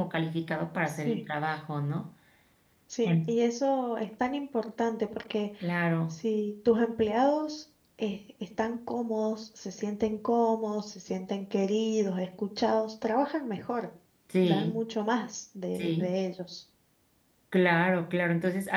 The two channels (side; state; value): both; identical; correlation 1.00